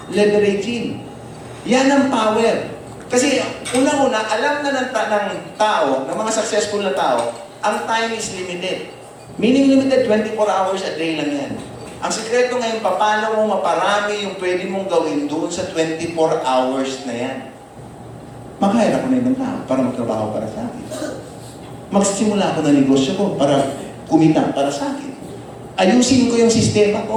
leveraging. Yan ang power. Kasi unang-una, alam na ng tao, ng mga successful na tao, ang time is limited. Meaning limited, 24 hours a day lang yan. Ang sekreto ngayon, paano mo maparami yung pwede mong gawin doon sa 24 hours na yan. Mag-hire ako na ibang tao para magtrabaho para sa akin. Magsisimula ako ng negosyo ko para kumita para sa akin. Ayusin ko yung sistema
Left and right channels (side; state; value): both; identical; correlation 1.00